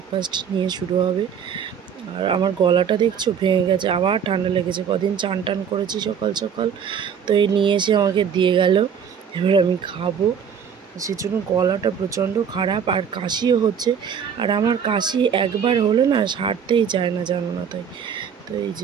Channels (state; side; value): quieter; left; 7.5 dB